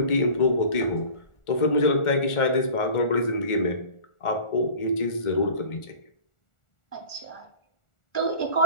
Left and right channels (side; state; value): right; late; 1.4 ms